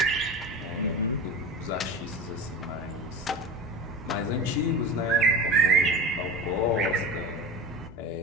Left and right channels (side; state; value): both; normal; correlation 0.30